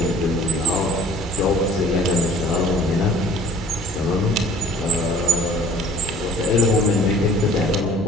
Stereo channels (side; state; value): both; normal; correlation 0.50